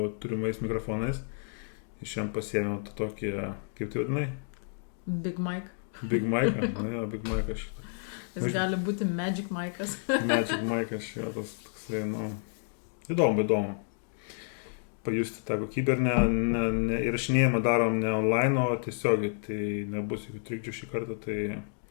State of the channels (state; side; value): silent; right; digital silence